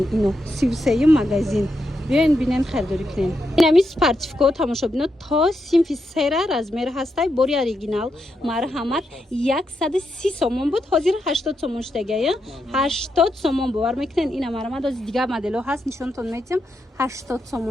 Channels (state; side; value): normal; both; correlation 0.84